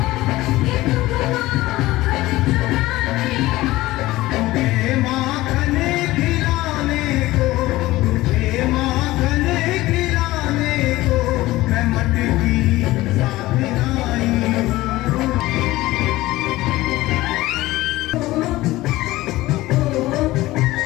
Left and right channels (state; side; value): quieter; right; 17.8 dB